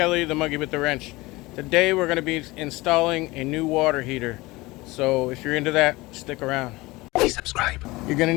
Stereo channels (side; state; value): right; quieter; 21.3 dB